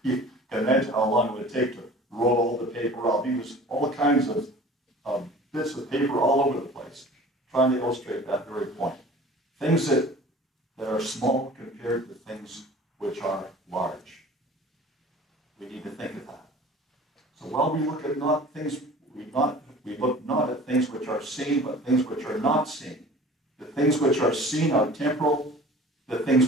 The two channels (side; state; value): both; normal; correlation 0.44